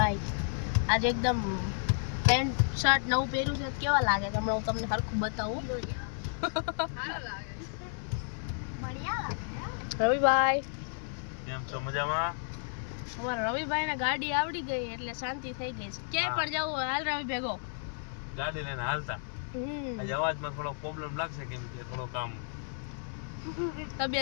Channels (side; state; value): right; silent; 56 dB below the other